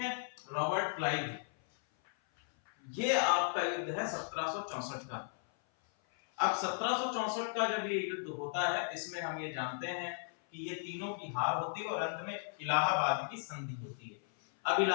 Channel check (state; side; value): silent; right; 54 dB below the other